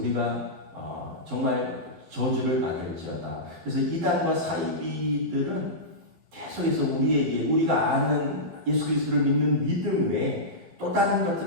정말 저주를 받을지어다. 그래서 이단과 사이비들은 계속해서 우리가 아는 예수 그리스도를 믿는 믿음 외에 또 다른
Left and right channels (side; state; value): left; late; 12 ms